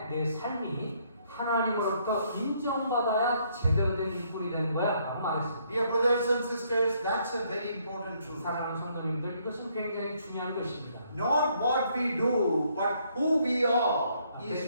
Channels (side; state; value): both; inverted; correlation -0.69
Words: 내 삶이 하나님으로부터 인정받아야 제대로 된 일꾼이 되는 거야 라고 말했습니다. Dear brothers and sisters, that's a very important truth. 사랑하는 성도님들 이것은 굉장히 중요한 것입니다. Not what we do, but who we are is